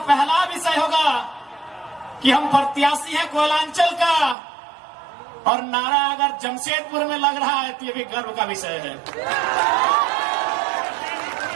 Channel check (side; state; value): left; drops out; at 4.4 s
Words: विषय होगा कि हम प्रत्याशी हैं कोयलांचल का, और नारा अगर जमशेदपुर में लग रहा है तो ये भी गर्व का विषय है।